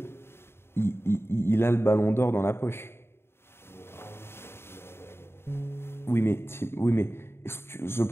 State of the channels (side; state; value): right; late; 0.12 ms